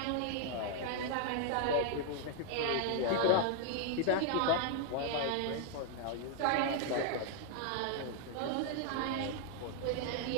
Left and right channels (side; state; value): both; different; correlation 0.00